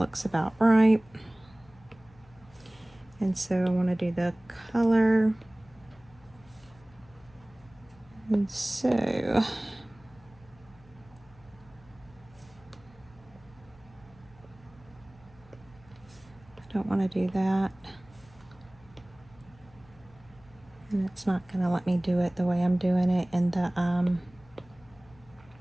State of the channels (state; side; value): noise; left; hum, 26 dB below the sound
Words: about right. And so I want to do the color. And so I don't want to do that. And it's not going to let me do it the way I'm doing it in the